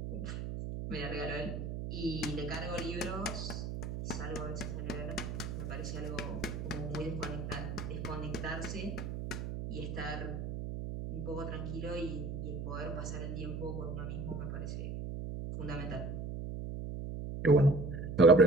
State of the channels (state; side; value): noise; right; hum, 5 dB below the sound